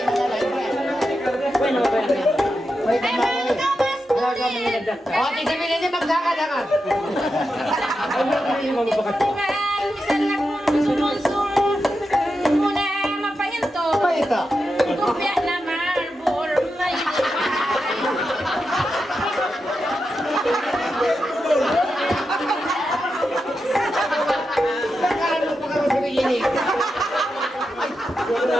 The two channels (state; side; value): normal; both; correlation 0.88